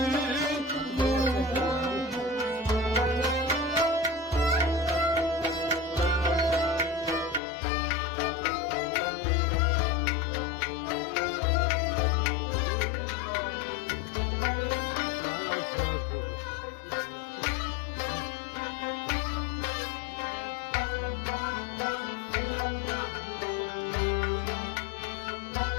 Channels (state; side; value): drops out; right; at 7.4 s